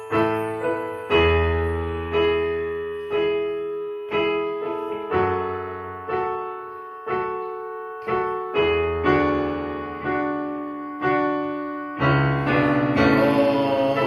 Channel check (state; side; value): identical; both; correlation 1.00